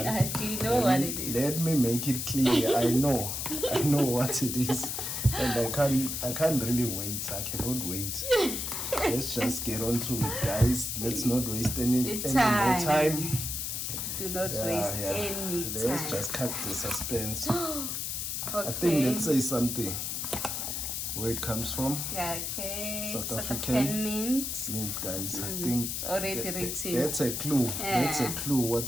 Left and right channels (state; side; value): noise; left; hiss, 3 dB below the sound